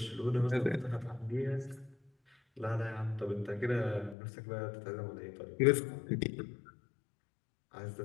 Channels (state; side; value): drops out; right; at 4.2 s